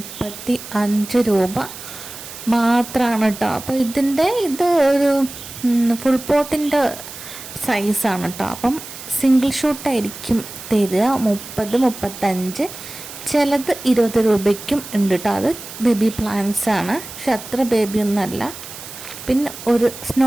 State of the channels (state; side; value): noise; right; hiss, 13 dB below the sound